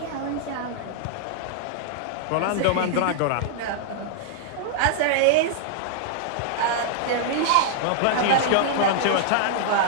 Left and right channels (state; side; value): different; both; correlation -0.01